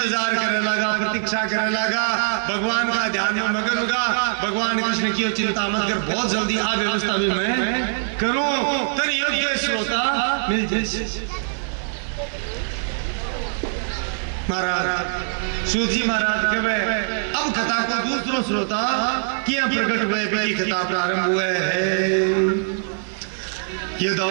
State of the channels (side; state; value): left; silent; digital silence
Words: करने लगा, प्रतीक्षा करने लगा, भगवान का ध्यान में मगन होगा। भगवान कृष्ण की चिंता मत कर, बहुत जल्दी आ व्यवस्था भी मैं करूं, तो योग्य श्रोता मिल जाए। महाराज सूत जी महाराज कहे अब कथा को दूसरो श्रोता किया प्रकट हुए भी कथा प्रारंभ हुए है।